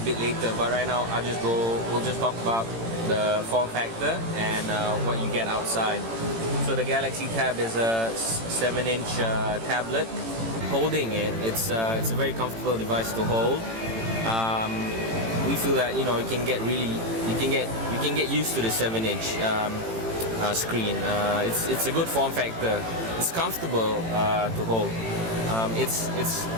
bit later, but right now we'll just talk about the form factor and what you get outside. So the Galaxy Tab is a 7-inch tablet. Holding it, it's a very comfortable device to hold. We feel that you can get used to the 7-inch screen. It's a good form factor. It's comfortable to hold. It's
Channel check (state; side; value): late; left; 18 ms